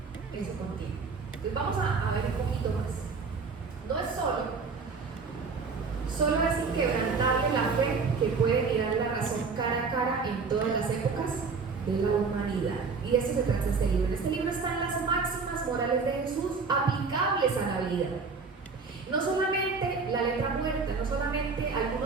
Eso contiene. Entonces vamos a ver un poquito más. No es solo es inquebrantable la fe que puede mirar la razón cara a cara en todas las épocas de la humanidad. Y de eso se trata este libro. En este libro están las máximas morales de Jesús aplicables a la vida. No solamente la letra muerta, no solamente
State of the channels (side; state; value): left; quieter; 4.8 dB